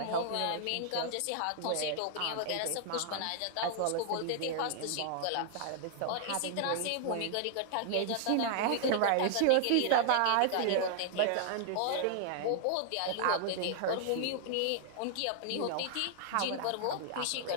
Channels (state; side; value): different; both; correlation 0.00